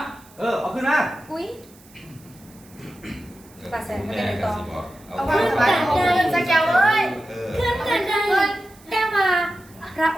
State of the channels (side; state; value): right; noise; hiss, 26 dB below the sound